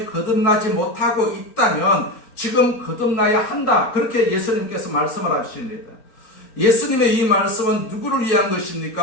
거듭나지 못하고 있다면 지금 거듭나야 한다. 그렇게 예수님께서 말씀을 하십니다. 예수님의 이 말씀은 누구를 위한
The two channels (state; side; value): late; right; 4.6 ms